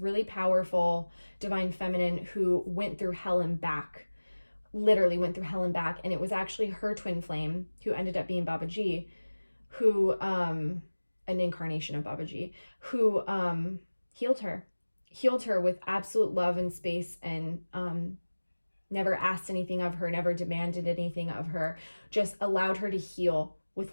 powerful divine feminine who went through hell and back, literally went through hell and back. And it was actually her twin flame, who ended up being Babaji, who, an incarnation of Babaji, who healed her with absolute love and space, and never asked anything of her, never demanded anything of her, just allowed her to heal with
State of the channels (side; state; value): both; inverted; correlation -1.00